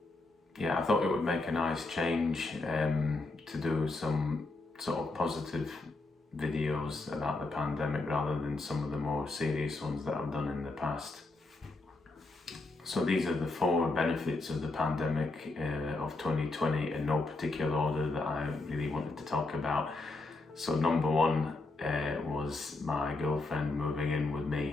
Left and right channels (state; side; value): quieter; right; 3.2 dB